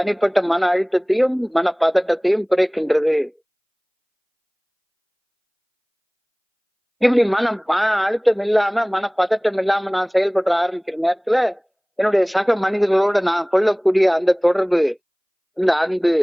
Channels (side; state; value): both; identical; correlation 1.00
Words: மன அழுத்தத்தையும் மன பதட்டத்தையும் குறைக்கின்றது. இப்படி மன அழுத்தம் இல்லாம, மன பதட்டம் இல்லாம நான் செயல்பட ஆரம்பிக்கிற நேரத்துல என்னுடைய சக மனிதர்களோட நான் கொள்ளக்கூடிய அந்த தொடர்பு, அந்த அன்பு,